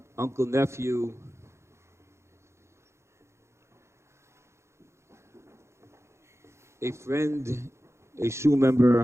uncle, nephew, a friend, a shul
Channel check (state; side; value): late; left; 0.13 ms